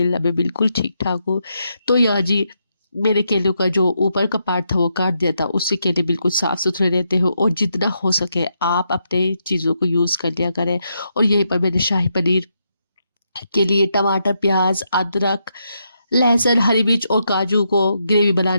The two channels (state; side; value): inverted; both; correlation -0.81